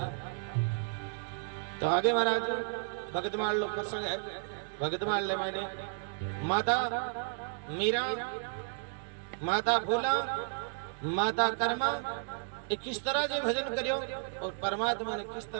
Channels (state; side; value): silent; left; digital silence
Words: तो आगे महाराज भगतमाल लोग प्रसंग है भगतमाल ले मैंने माता मीरा माता भोला माता कर्मा किस तरह से भजन करियो और परमात्मा ने किस